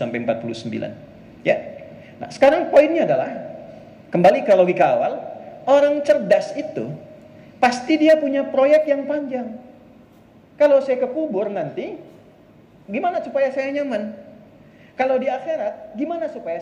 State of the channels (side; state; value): both; identical; correlation 1.00